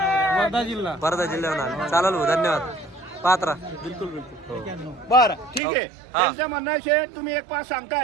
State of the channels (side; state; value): left; drops out; at 5.6 s